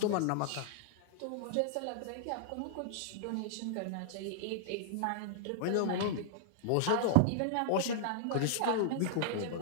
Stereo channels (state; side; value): different; both; correlation -0.01